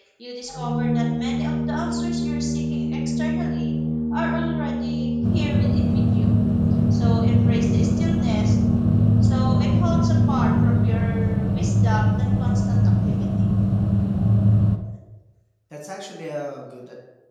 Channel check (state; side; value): identical; both; correlation 1.00